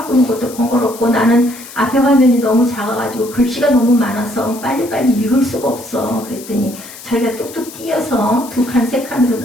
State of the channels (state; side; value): noise; left; hiss, 16 dB below the sound